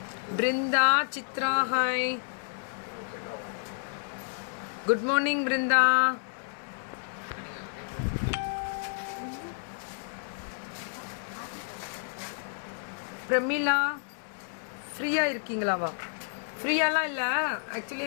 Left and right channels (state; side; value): silent; right; 58 dB below the other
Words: Brinda, Chitra, hi. Good morning, Brinda. Pramila, ஃப்ரீயாக இருக்கீங்களாவா? ஃப்ரீயாலாம் இல்லை, actually